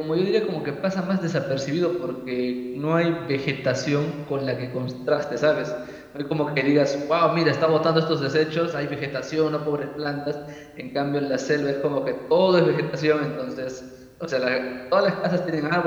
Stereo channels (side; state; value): both; identical; correlation 1.00